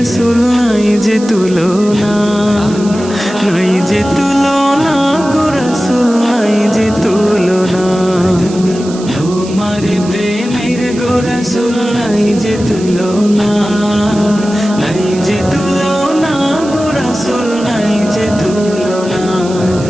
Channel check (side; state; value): right; noise; hiss, 16 dB below the sound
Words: নাই যে তুলনা, নাই যে তুলনা গো রাসূল নাই যে তুলনা। তোমার প্রেমের গো রাসূল নাই যে তুলনা, নাই যে তুলনা গো রাসূল নাই যে তুলনা।